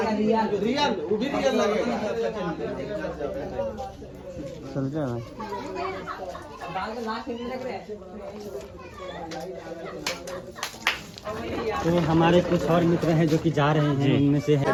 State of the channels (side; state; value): both; identical; correlation 1.00